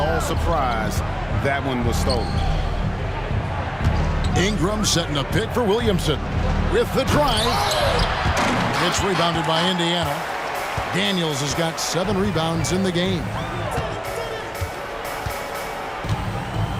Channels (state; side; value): identical; both; correlation 1.00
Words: surprised that one was stolen. Ingram setting a pick for Williamson with the drive. It's rebounded by Indiana. Daniels has got 7 rebounds in the game.